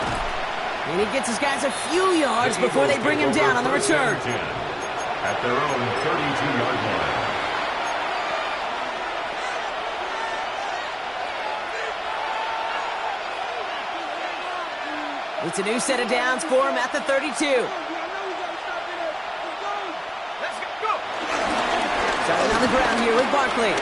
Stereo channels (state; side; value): identical; both; correlation 1.00